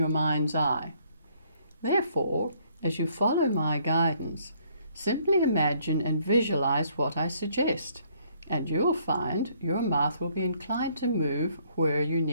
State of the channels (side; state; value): both; inverted; correlation -0.66